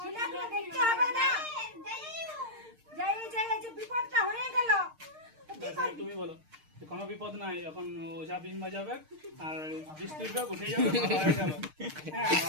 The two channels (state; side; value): late; left; 6.5 ms